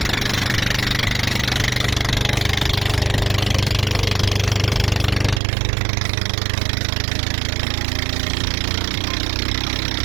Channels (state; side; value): drops out; left; at 5.4 s